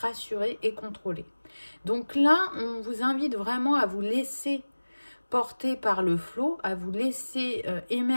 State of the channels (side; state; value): both; inverted; correlation -1.00